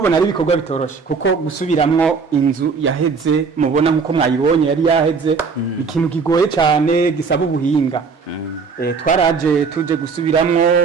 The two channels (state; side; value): quieter; left; 5.2 dB